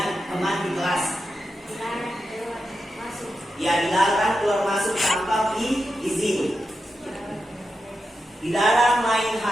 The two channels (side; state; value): both; normal; correlation 0.89